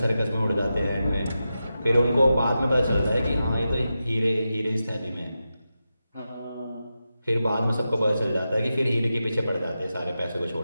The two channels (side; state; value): both; inverted; correlation -0.90